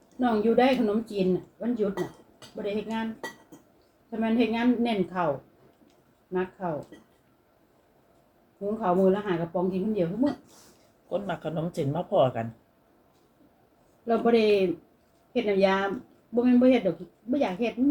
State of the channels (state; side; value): identical; both; correlation 1.00